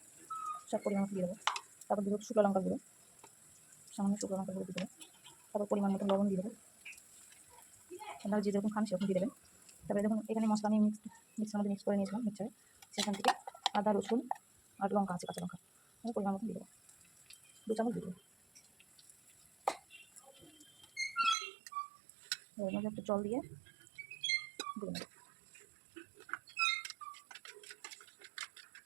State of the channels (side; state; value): left; drops out; at 21.4 s